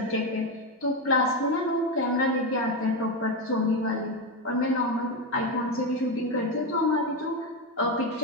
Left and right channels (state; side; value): normal; both; correlation 0.12